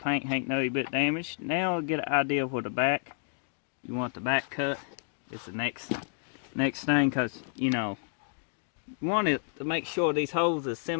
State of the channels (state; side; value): silent; right; digital silence